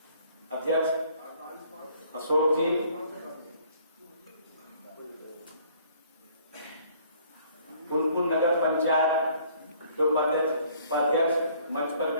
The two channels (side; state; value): both; inverted; correlation -0.59